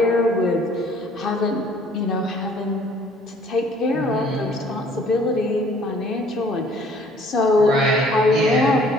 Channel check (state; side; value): normal; both; correlation 0.57